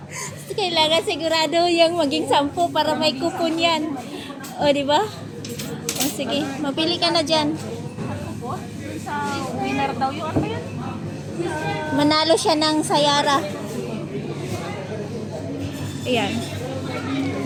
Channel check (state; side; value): identical; both; correlation 1.00